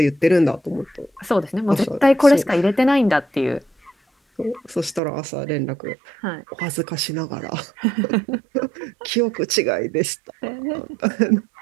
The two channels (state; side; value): drops out; left; at 5.0 s